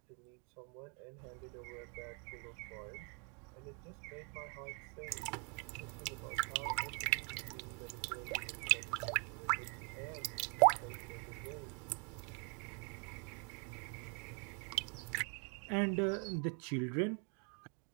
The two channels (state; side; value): quieter; left; 34.7 dB